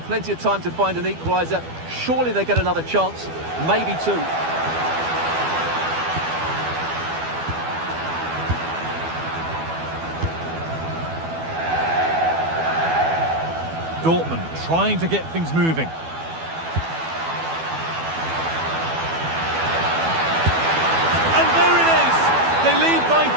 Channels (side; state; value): left; late; 12 ms